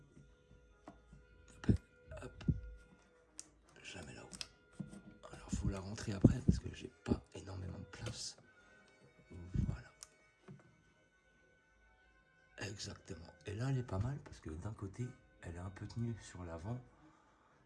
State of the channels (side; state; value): both; identical; correlation 1.00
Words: Hop. Je la mets là-haut. Alors, faut la rentrer après parce que j'ai pas énormément de place. Voilà. Exactement. Et là, elle est pas mal parce que d'un côté, elle est un peu tenue sur l'avant.